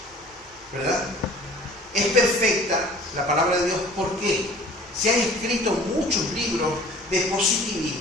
¿verdad? Es perfecta la palabra de Dios. ¿Por qué? Se han escrito muchos libros de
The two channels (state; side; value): normal; both; correlation 0.48